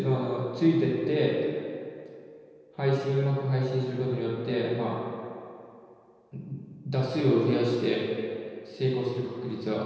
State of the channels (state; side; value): identical; both; correlation 1.00